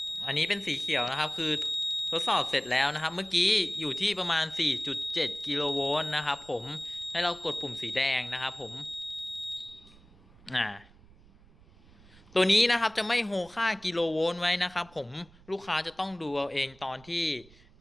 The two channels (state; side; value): noise; right; rumble, 25 dB below the sound